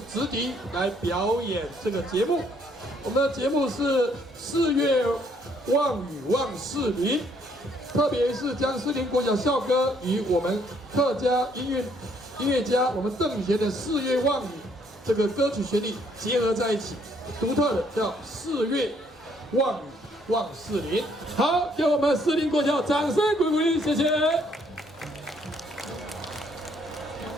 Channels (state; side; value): normal; both; correlation 0.67